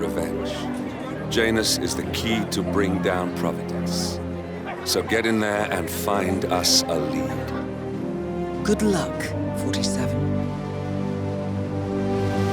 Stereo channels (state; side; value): identical; both; correlation 1.00